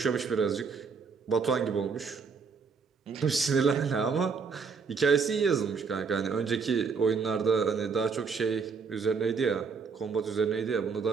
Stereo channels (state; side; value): quieter; left; 5.3 dB